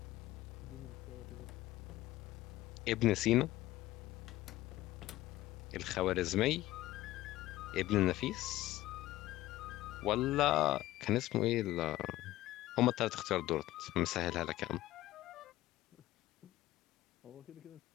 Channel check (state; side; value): quieter; right; 16.1 dB